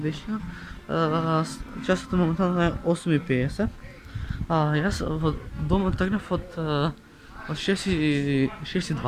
Часот моментално е 8:50. Јас во дома тргнав од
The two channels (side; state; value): both; identical; correlation 1.00